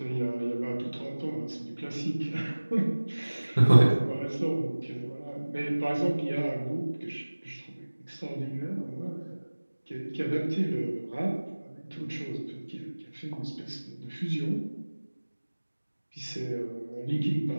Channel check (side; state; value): both; inverted; correlation -1.00